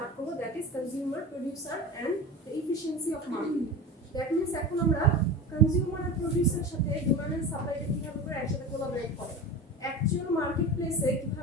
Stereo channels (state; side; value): normal; both; correlation 0.30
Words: করব that is consumer, producer and the efficiency of market. That means এখন আমরা কনজিউমার আর প্রোডিউসারের সাথে ডিমান্ড এন্ড সাপ্লাইটা কিভাবে করে একসাথে কোলাবরেট করে, অ্যাকচুয়াল মার্কেট প্লেসে